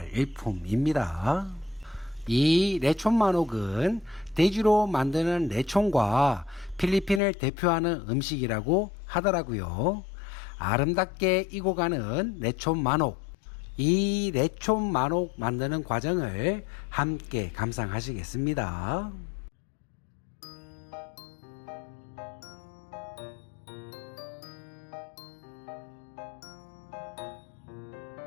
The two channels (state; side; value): drops out; right; at 7.2 s